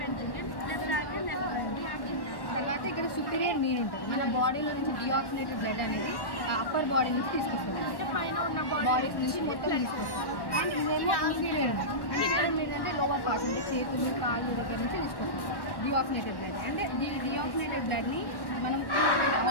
తర్వాత ఇక్కడ సుపీరియర్ మీన్ ఉంటుంది. మన బాడీలో నుంచి డిఆక్సినేటెడ్ బ్లడ్ అనేది అప్పర్ బాడీ నుంచి తీసుకొస్తుంది, బాడీస్ నుంచి మొత్తం తీసుకొస్తుంది. అండ్ ఇదేమో ఇన్ఫీరియర్ ఉంటుంది. అంటే ఇక్కడ ఏంటంటే లోవర్ పార్ట్ నుంచి చేతులు కాళ్ళు దగ్గర నుంచి తీసుకొస్తుంది డిఆక్సినేటెడ్ బ్లడ్. అంటే డిఆక్సినేటెడ్ బ్లడ్ని మనం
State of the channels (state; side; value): late; right; 1.1 ms